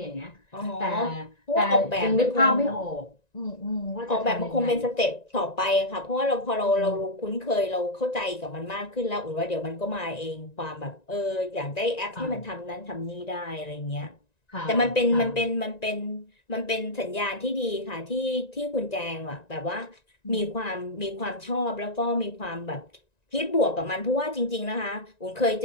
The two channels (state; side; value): late; right; 1.9 ms